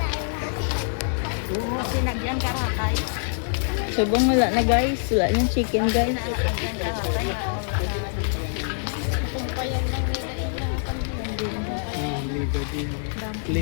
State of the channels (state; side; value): silent; right; digital silence